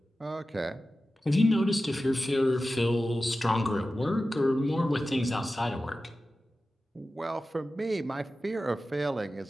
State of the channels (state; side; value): normal; both; correlation 0.94